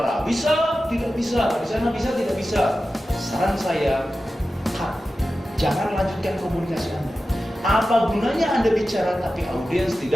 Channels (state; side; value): normal; both; correlation 0.93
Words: bisa? Tidak bisa. Di sana bisa? Tidak bisa. Saran saya, cut. Jangan lanjutkan komunikasi Anda. Apa gunanya Anda bicara tapi audiens